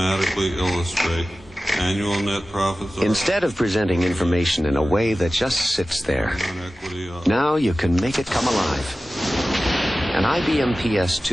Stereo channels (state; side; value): normal; both; correlation 0.96